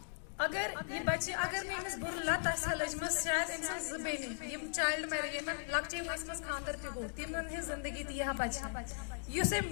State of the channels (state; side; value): silent; right; digital silence